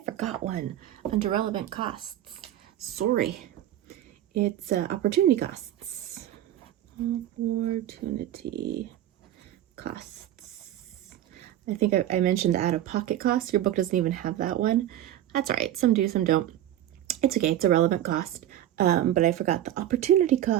forgot one under relevant costs. Sorry. It's opportunity costs. Opportunity costs. I think I mentioned the out-of-pocket costs. Your book doesn't even have that one. That's all right. Some do, some don't. It's okay. It's a relevant cost. But I forgot the opportunity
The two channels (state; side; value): quieter; left; 12.3 dB